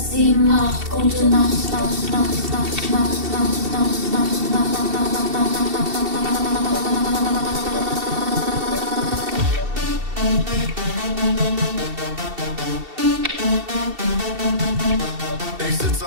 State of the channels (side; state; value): left; late; 2.7 ms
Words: 7, 8, gute Nacht. Ich sitz